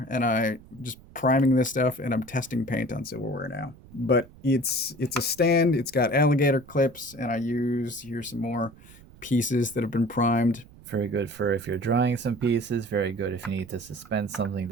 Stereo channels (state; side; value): noise; right; rumble, 22 dB below the sound